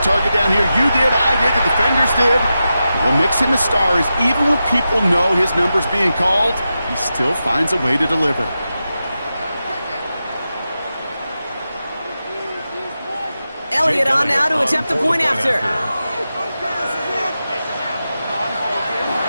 down here. You did, I did, the defenders did. What makes him a star is even when people know his number's being called, he still finds a way to deliver. Elliott on now to attempt the point after.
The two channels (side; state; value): both; inverted; correlation -0.90